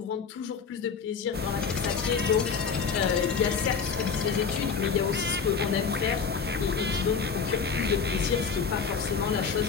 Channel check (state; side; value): quieter; right; 5.9 dB